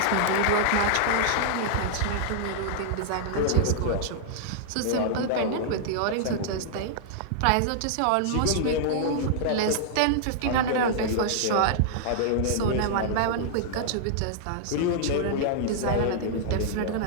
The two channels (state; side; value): different; both; correlation -0.01